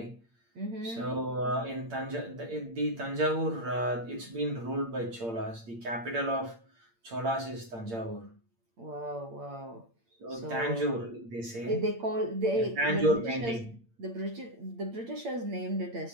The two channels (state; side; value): late; left; 8.7 ms